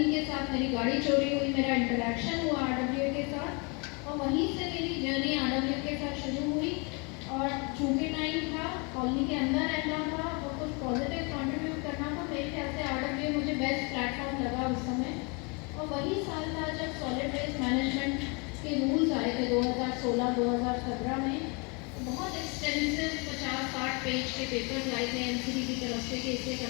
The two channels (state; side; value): quieter; right; 31.9 dB